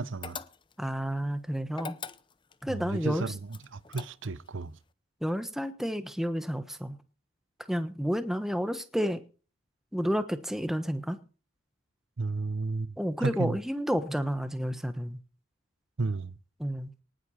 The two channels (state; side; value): normal; both; correlation 0.90